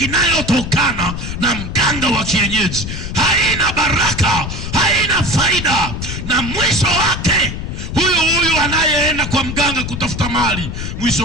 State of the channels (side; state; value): left; noise; rumble, 6 dB below the sound